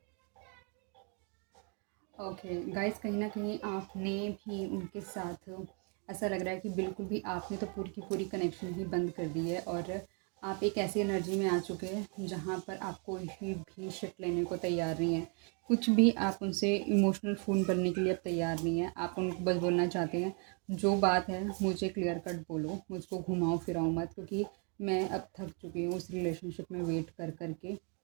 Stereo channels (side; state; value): left; quieter; 38.4 dB